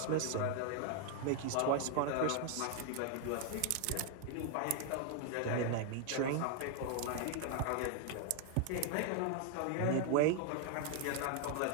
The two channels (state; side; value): different; both; correlation 0.00